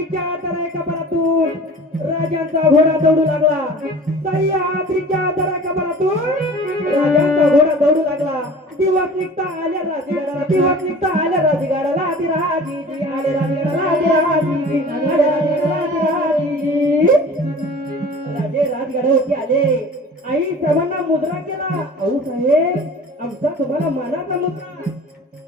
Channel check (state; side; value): normal; both; correlation 0.42